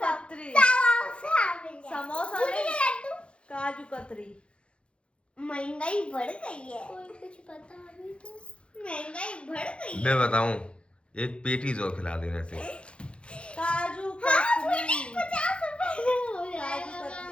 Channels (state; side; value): late; right; 0.058 ms